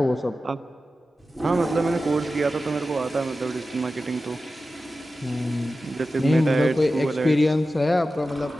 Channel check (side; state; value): both; normal; correlation 0.93